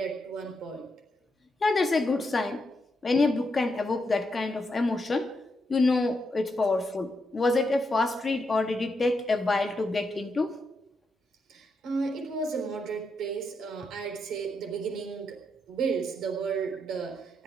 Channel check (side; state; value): both; normal; correlation 0.82